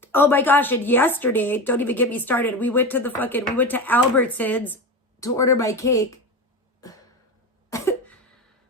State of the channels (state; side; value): normal; both; correlation 0.23